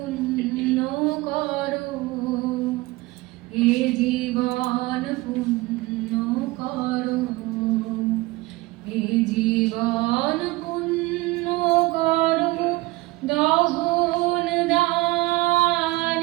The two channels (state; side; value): quieter; left; 20.8 dB